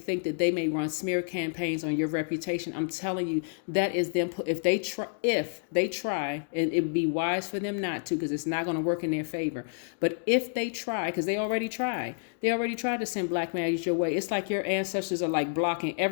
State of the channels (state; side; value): silent; right; digital silence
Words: that they may run smear campaigns on your reputation. I'm telling you, that is them. If they try, and it would be wise for them not to, because it's not gonna work in their favor. But if they try, because they already tried to send black magic your way. It's like your ancestors are like blocking